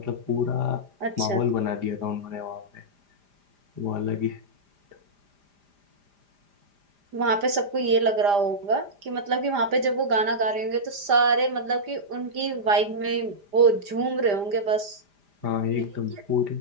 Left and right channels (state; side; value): late; left; 5.0 ms